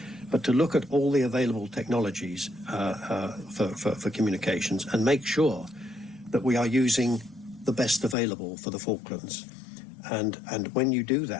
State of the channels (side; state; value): right; drops out; at 8.2 s